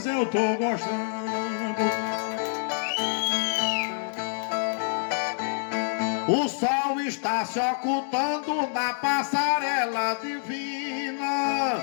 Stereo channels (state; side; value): silent; right; digital silence